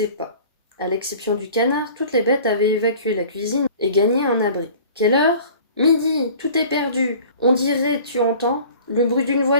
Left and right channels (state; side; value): inverted; both; correlation -0.46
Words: pas. À l'exception du canard, toutes les bêtes avaient évacué la cuisine et gagné un abri. « Quelle heure ? Midi, tout est perdu. On dirait, tu entends, le bruit d'une